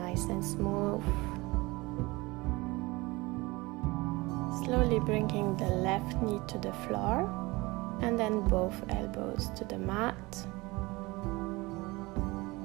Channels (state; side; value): quieter; left; 22.8 dB